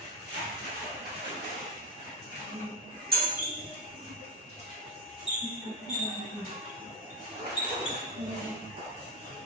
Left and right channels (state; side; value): normal; both; correlation 0.07